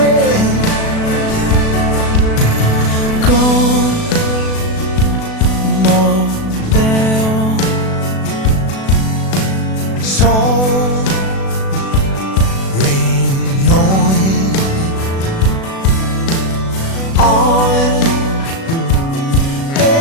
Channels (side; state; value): right; late; 36 ms